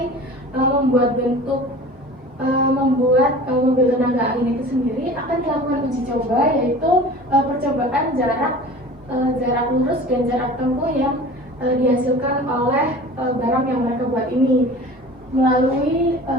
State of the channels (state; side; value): normal; both; correlation 0.40